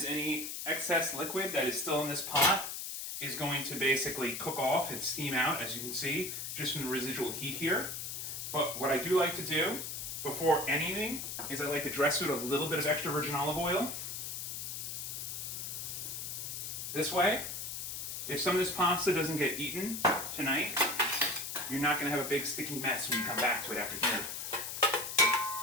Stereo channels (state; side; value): noise; left; hiss, 5 dB below the sound